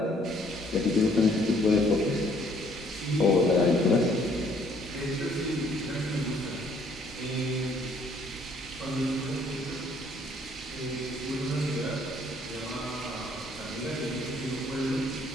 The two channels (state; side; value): normal; both; correlation 0.63